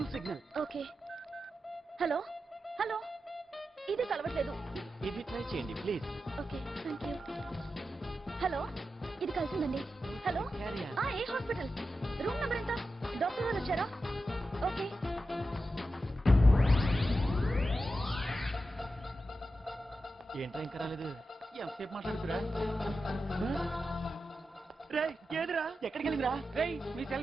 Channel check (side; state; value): both; normal; correlation 0.90